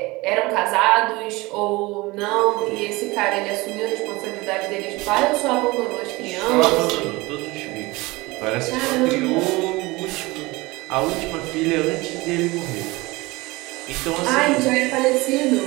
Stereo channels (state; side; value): quieter; left; 22.3 dB